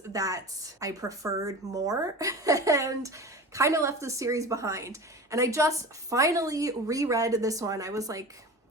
that I preferred more and kind of left the series behind. And I just finally reread this one. I was like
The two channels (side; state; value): both; normal; correlation 0.33